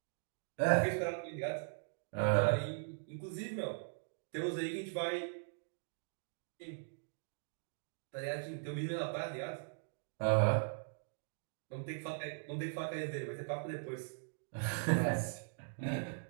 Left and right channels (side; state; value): left; silent; digital silence